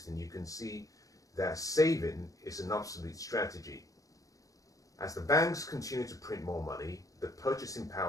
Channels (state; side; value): late; right; 0.17 ms